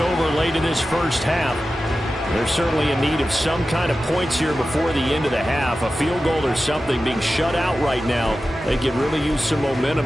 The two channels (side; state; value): both; normal; correlation 0.93